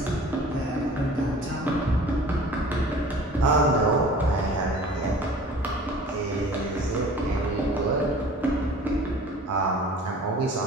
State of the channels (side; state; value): both; normal; correlation 0.45